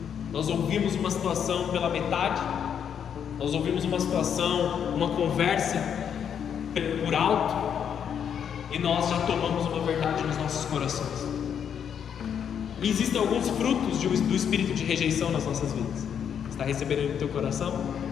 Nós ouvimos uma situação pela metade, nós ouvimos uma situação, uma conversa por alto, e nós já tomamos uma verdade nos nossos corações. E existem alguns frutos do espírito de rejeição nas nossas vidas. Você está recebendo ele no teu coração?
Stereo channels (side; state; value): right; quieter; 8.2 dB